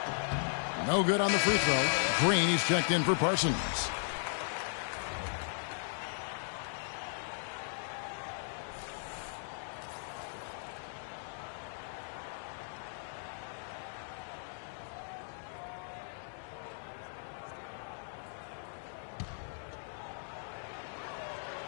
No good on the free throw. Green, he's checked in for Parsons.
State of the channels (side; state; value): right; silent; digital silence